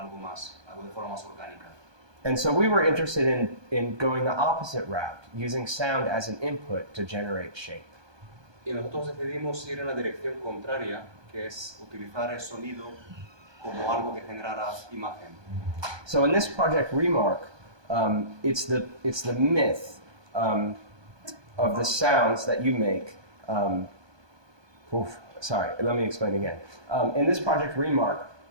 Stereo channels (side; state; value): left; late; 1.2 ms